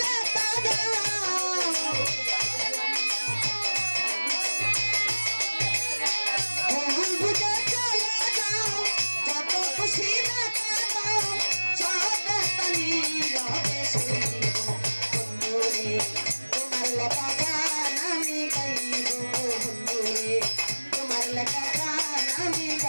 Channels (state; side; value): inverted; both; correlation -1.00